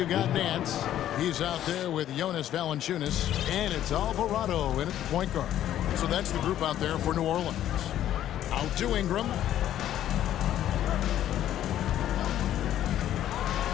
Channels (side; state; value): right; quieter; 11.8 dB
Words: got Nance. He's out there with Jonas Valanciunas, and it's Alvarado in at the point guard. So that's the group out there for New Orleans. Out to Ingram.